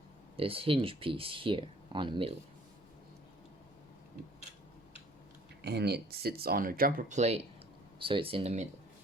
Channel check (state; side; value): normal; both; correlation 0.55